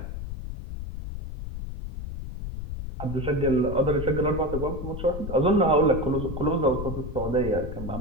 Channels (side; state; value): left; noise; rumble, 7 dB below the sound